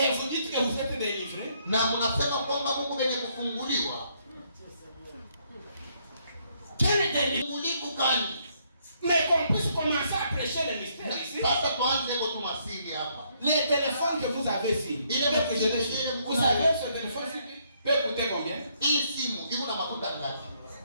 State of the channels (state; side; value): inverted; both; correlation -0.71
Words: vous dites que vous êtes délivrés? Quel est délivré? Mais qu'on puisse commencer à prêcher le mystère ici. Les téléphones que vous avez ici, vous savez ce téléphone peut coûter combien?